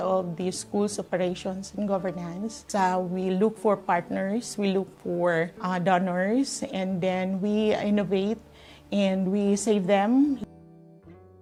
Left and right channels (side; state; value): both; identical; correlation 1.00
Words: the school's operations and governance, we look for partners, we look for donors, and then we innovate and we save them.